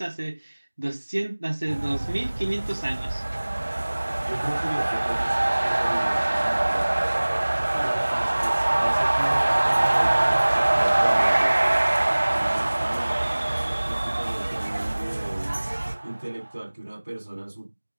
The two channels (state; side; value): inverted; both; correlation -1.00